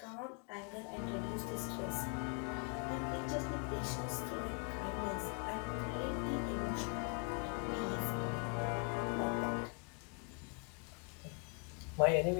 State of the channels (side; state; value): right; quieter; 38.2 dB